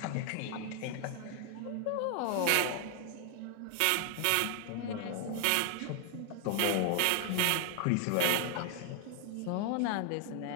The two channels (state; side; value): different; both; correlation 0.00